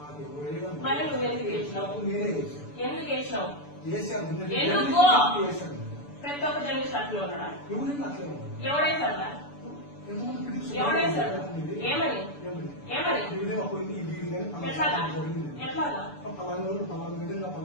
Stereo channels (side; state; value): right; late; 6.9 ms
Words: మరి నువ్వు ఎందుకు వేసినావు? ఎందుకు వేసినావు? ఎందుకు ప్రతి ఒక్క జర్నలిస్ట్ అట్లా ఉన్నాడా? ఎవడేసాడా? ఎవడేసాడు? ఏమని ఏమని ఎట్లాగా ఎట్లాగా